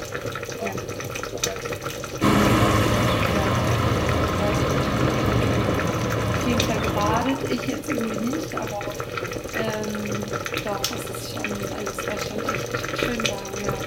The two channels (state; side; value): identical; both; correlation 1.00